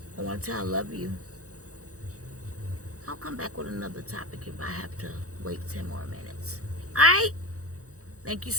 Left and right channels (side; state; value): left; late; 0.65 ms